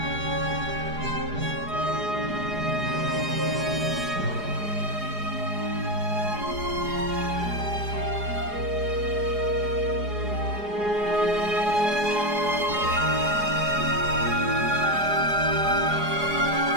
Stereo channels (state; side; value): late; left; 4.8 ms